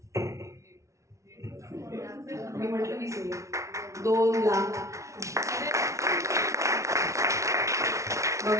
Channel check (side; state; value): left; late; 0.14 ms